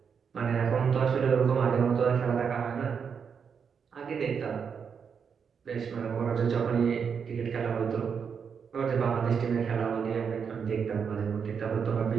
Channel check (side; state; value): left; quieter; 6.6 dB